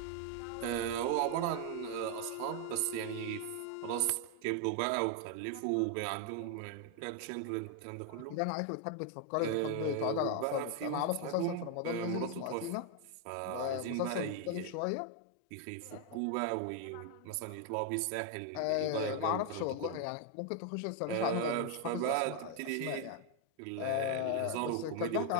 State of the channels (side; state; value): both; different; correlation 0.00